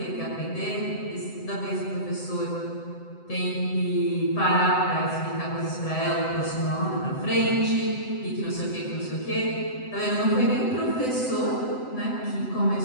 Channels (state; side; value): late; right; 7.8 ms